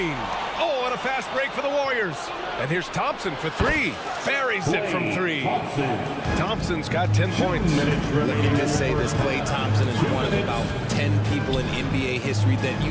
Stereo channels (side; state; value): both; identical; correlation 1.00